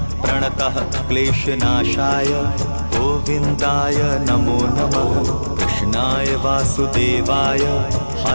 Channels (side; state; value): both; inverted; correlation -1.00